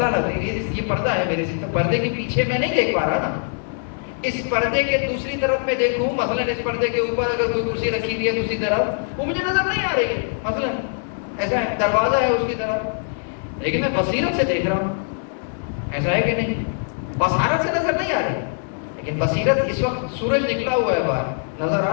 لگ رہی ہے، یہ پردہ ہے میرے سے، پردے کے پیچھے میں نہیں دیکھ پا رہا نا. اس پردے کے دوسری طرف میں دیکھوں، مثلا اس پردے کے اوپر اگر کوئی کرسی رکھی ہوئی ہے دوسری طرف، وہ مجھے نظر نہیں آ رہی ہے. مثلا ایسا ہے، دروازہ ہے اس کی طرف، لیکن میں بصیرت سے دیکھ رہا ہوں. ایسا ہے کہ نہیں؟ بصارت سے نظر نہیں آ رہی، لیکن بصیرت. اس وقت سورج نکلا ہوا ہے باہر، نظر آ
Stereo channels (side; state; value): right; silent; digital silence